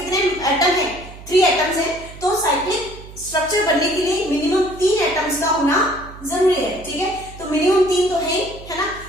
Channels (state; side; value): noise; right; hum, 16 dB below the sound